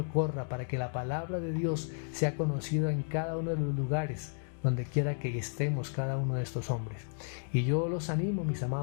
corra, para que la palabra de Dios sea conocida en cada uno de los lugares donde quiera que estemos cada uno de estos hombres. Y yo los animo, mis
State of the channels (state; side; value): silent; right; digital silence